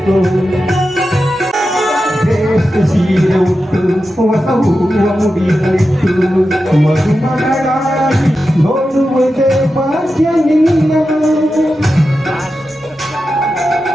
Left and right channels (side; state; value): both; normal; correlation 0.91